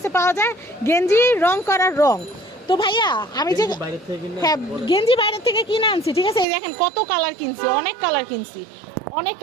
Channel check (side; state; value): left; drops out; at 6.5 s